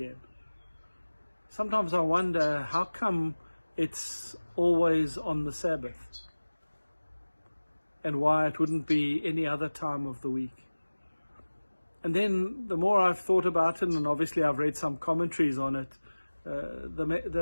Sometimes I wonder, how come it's always on the Sabbath? And why it wouldn't be any other time of the week. And then the more I've thought about it, and obviously I've read some commentaries on it,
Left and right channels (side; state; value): both; inverted; correlation -1.00